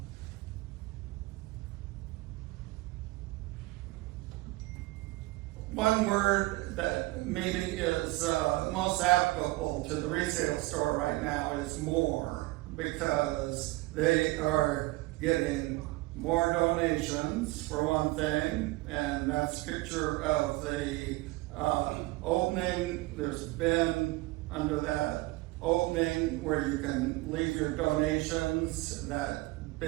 one word that maybe is most applicable to the resale store right now is more, because they are getting more donations for one thing, and that's a picture of the opening. There's been under that opening where you can leave your donations. That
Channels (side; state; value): left; quieter; 20.9 dB